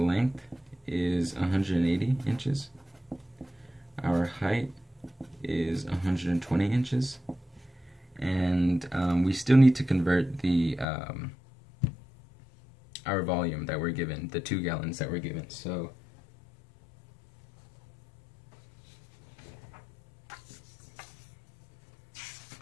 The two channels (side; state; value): right; drops out; at 10.9 s